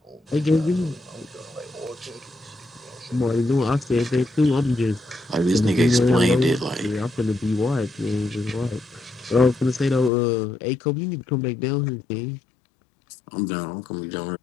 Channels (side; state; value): right; drops out; at 10.1 s